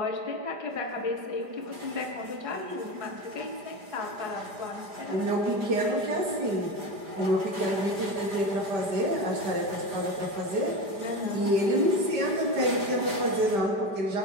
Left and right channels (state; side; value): late; left; 5.0 ms